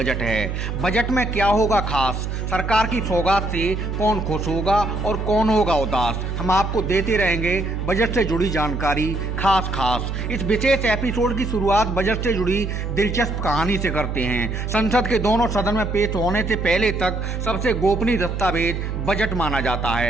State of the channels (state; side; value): noise; right; hum, 3 dB below the sound